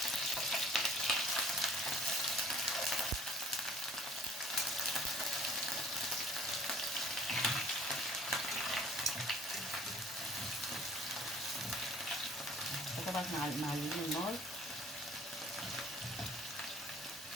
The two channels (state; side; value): normal; both; correlation 0.54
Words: فطبعا احنا معليين النار.